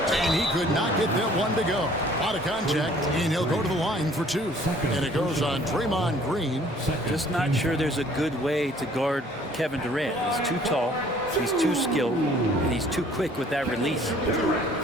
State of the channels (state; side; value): normal; both; correlation 0.56